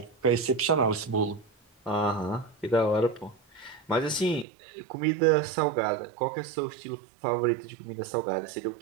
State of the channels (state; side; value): drops out; left; at 4.5 s